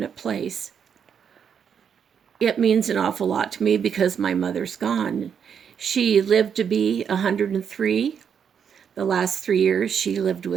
place. It means an awful lot to me because my mother's gone. She lived to be 103. The last 3 years she lived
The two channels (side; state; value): left; quieter; 7.5 dB